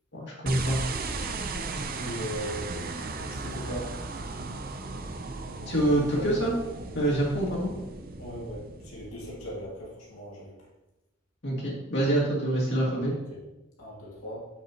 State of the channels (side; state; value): both; normal; correlation 0.49